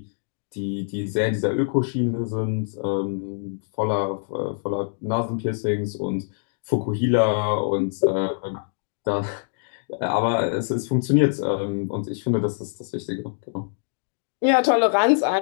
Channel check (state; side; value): silent; right; digital silence